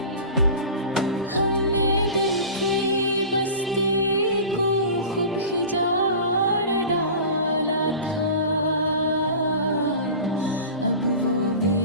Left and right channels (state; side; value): inverted; both; correlation -0.35